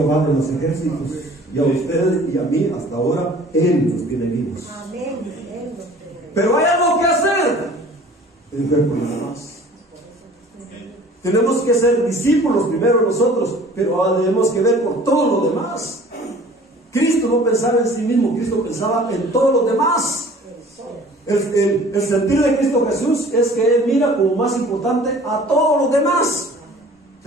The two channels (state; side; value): normal; both; correlation 0.48